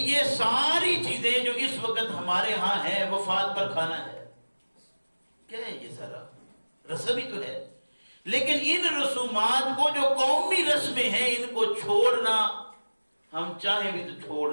یہ ساری چیزیں جو اس وقت ہمارے ہاں ہیں، وفات پر کھانا ہے، کیا ہے یہ سارا رسم ہی تو ہے، لیکن ان رسومات کو جو قومی رسمیں ہیں ان کو چھوڑنا ہم چاہیں بھی تو چھوڑ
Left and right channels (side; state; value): both; inverted; correlation -1.00